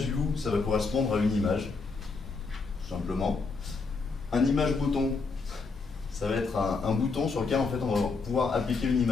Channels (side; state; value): right; quieter; 4.3 dB